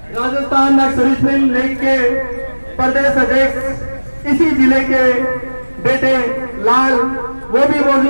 राजस्थान नक्सलिस्ट लीग के प्रदेश अध्यक्ष, इसी जिले के बेटे लाल, वो भी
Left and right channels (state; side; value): inverted; both; correlation -1.00